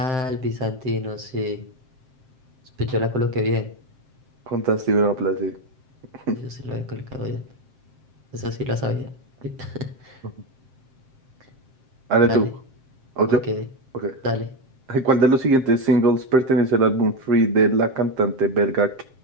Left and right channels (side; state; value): left; late; 7.6 ms